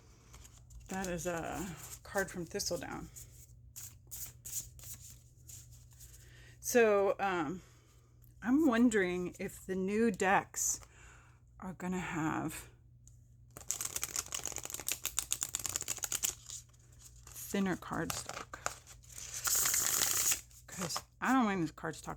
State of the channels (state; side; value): identical; both; correlation 1.00